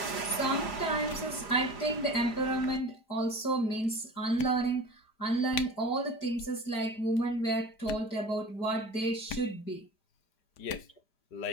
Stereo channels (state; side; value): late; right; 5.0 ms